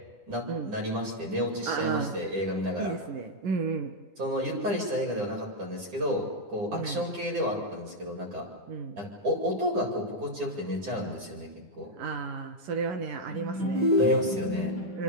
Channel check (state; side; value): late; left; 10 ms